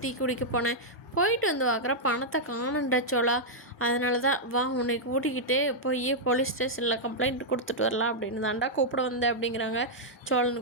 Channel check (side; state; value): both; normal; correlation -0.06